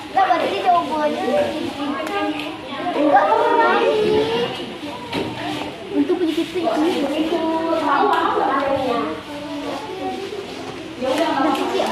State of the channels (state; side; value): identical; both; correlation 1.00